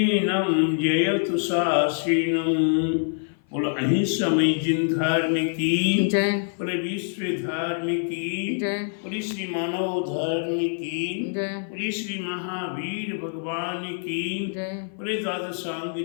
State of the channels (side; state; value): right; silent; 56 dB below the other